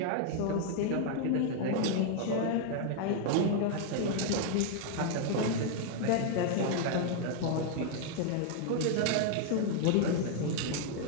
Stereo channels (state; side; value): different; both; correlation 0.00